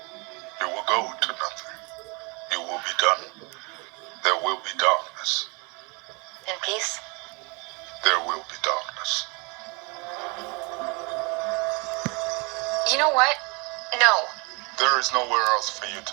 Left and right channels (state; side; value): quieter; left; 30.2 dB